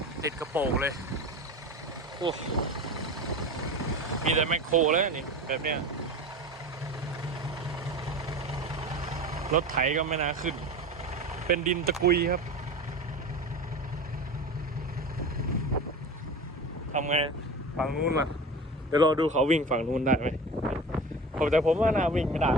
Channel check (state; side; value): normal; both; correlation 0.32